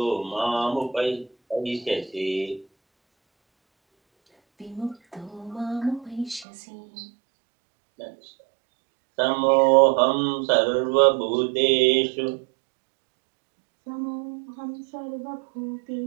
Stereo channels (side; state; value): left; drops out; at 6.5 s